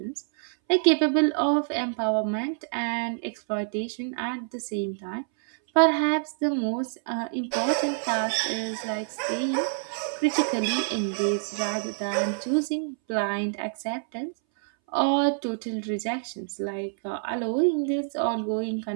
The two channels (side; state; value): left; silent; 60 dB below the other